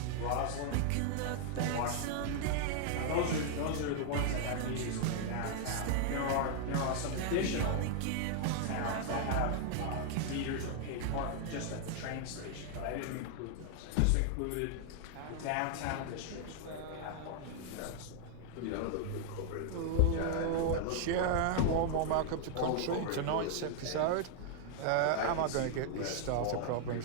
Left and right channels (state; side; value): different; both; correlation 0.00